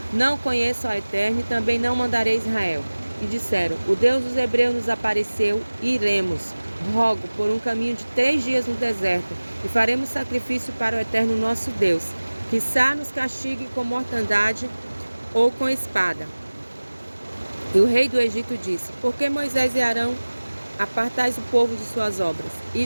Não conheço ao Eterno, e também não mandarei Israel. E disseram: O Deus dos hebreus nos apareceu, e iremos. Rogo por um caminho de 3 dias no deserto, e faremos sacrifício para o Eterno nosso Deus. Quizá nos castigue com mortandade ou com espada. E o rei do Egito disse: Por que Moisés e Arão apartais o povo de suas obras,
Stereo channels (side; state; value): both; inverted; correlation -1.00